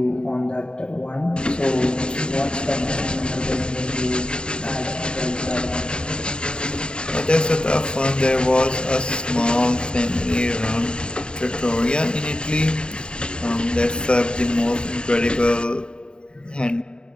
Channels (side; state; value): right; late; 0.050 ms